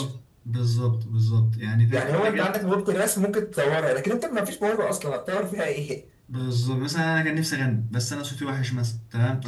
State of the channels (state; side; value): identical; both; correlation 1.00